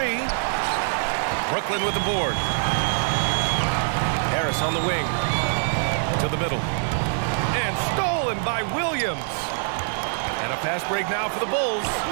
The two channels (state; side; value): silent; left; digital silence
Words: Brooklyn with the board. Harris on the wing. To the middle. And stolen by Williams. And a fast break now for the Bulls.